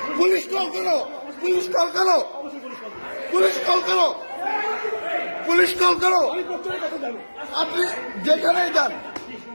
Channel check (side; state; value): both; inverted; correlation -1.00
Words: পুলিশ কল করো, পুলিশ কল করো, পুলিশ কল করো, পুলিশ কল করো। আপনি যেখানেই যান